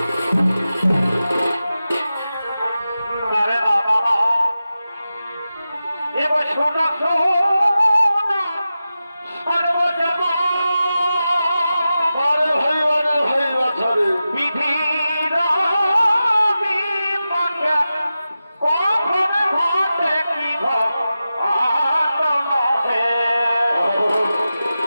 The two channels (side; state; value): both; inverted; correlation -0.93